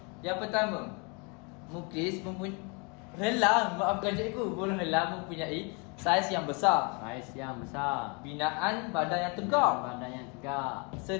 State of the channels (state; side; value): quieter; right; 32.3 dB